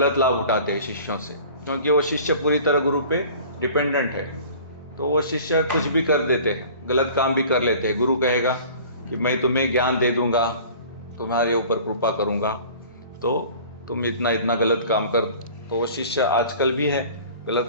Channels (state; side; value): inverted; both; correlation -0.45